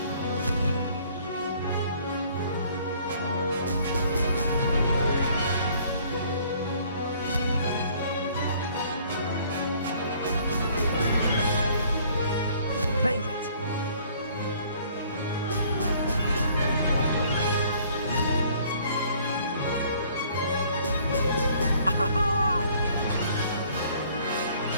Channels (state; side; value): inverted; both; correlation -0.59